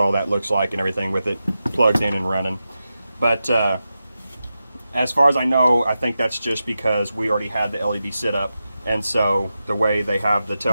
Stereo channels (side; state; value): both; inverted; correlation -0.91